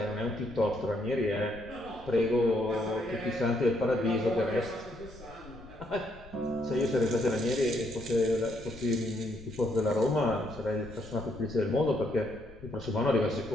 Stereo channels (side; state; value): left; noise; rumble, 20 dB below the sound